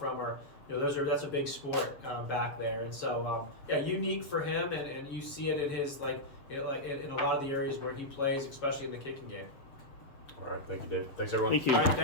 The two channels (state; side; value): late; right; 7.2 ms